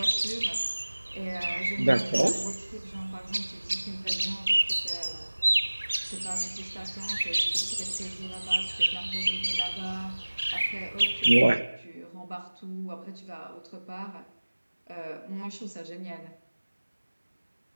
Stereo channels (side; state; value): both; inverted; correlation -1.00